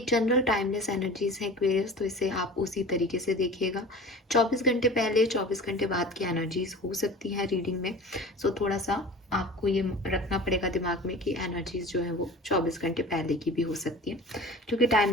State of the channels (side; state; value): both; normal; correlation 0.39